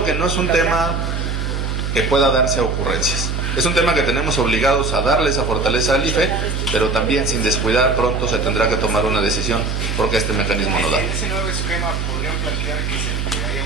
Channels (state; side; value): noise; right; hum, 2 dB below the sound